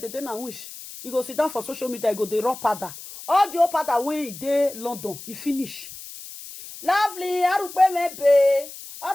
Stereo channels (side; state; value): left; noise; hiss, 14 dB below the sound